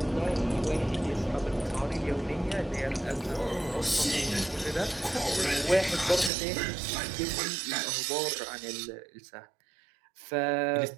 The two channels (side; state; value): left; drops out; at 6.3 s